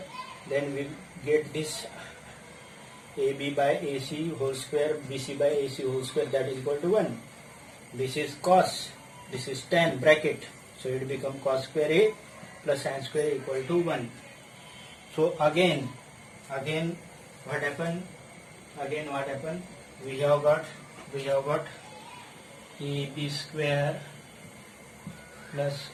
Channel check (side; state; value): both; identical; correlation 1.00